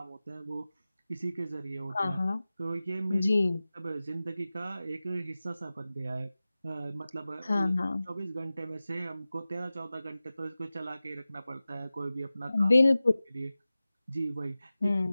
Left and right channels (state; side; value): inverted; both; correlation -0.96